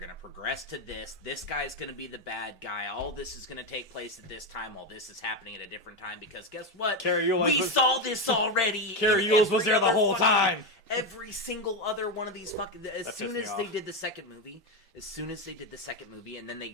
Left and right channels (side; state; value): both; normal; correlation 0.11